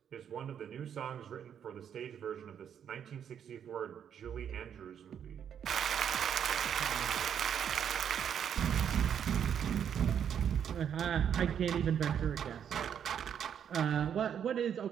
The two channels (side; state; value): left; quieter; 8.6 dB